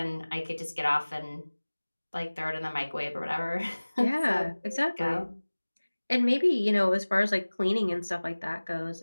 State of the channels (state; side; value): inverted; both; correlation -1.00